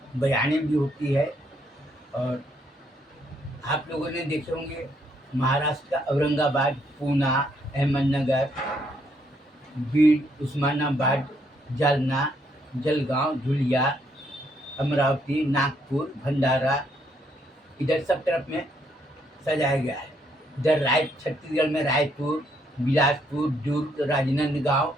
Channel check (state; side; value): normal; both; correlation 0.72